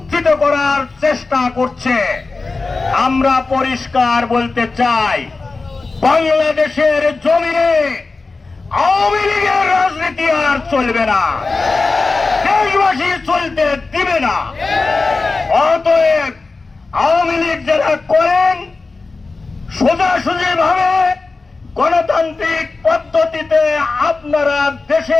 করার চেষ্টা করছে। আমরা পরিষ্কার বলতে চাই, বাংলাদেশের জমিনে আওয়ামী লীগের রাজনীতি আর চলবে না, দেশবাসী চলতে দিবে না। অতএব আওয়ামী লীগ যারা করেন, সোজাসুজি ভাবে গণতান্ত্রিক পদ্ধতিতে আপনারা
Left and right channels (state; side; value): quieter; right; 3.8 dB